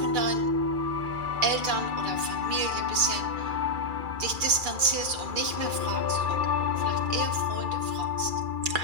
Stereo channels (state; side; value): late; left; 2.4 ms